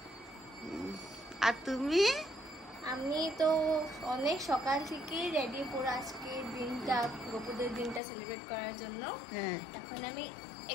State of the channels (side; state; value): right; drops out; at 8.0 s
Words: আর তুমি? আমি তো অনেক সকাল থেকে রেডি করে আজকে দিনটা, গোপুদের দিনটা সেলিব্রেট করার জন্য। হ্যাঁ, এখন আমি